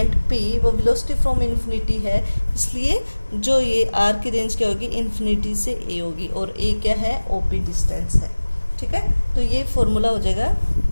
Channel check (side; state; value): both; inverted; correlation -1.00